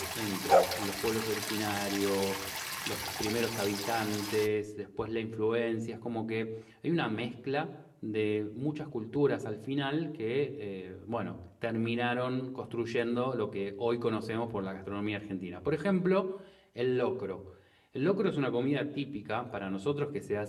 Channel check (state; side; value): identical; both; correlation 1.00